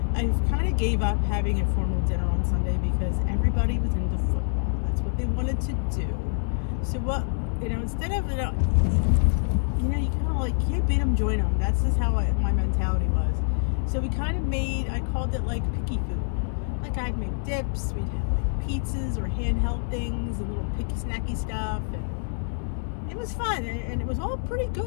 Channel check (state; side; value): silent; right; 61 dB below the other